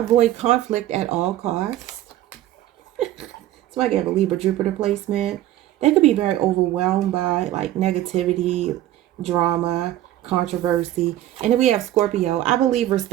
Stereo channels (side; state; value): left; quieter; 13.7 dB